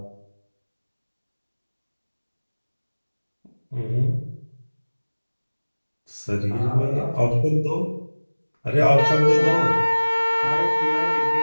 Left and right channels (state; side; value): inverted; both; correlation -1.00